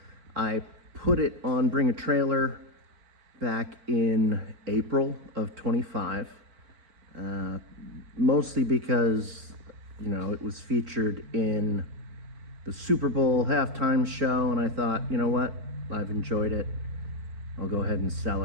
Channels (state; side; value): late; left; 4.4 ms